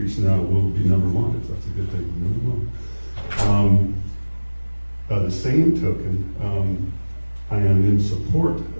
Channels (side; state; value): both; inverted; correlation -1.00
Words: now, we'll be number one, if that's a good thing, number one. By the same token, I am in support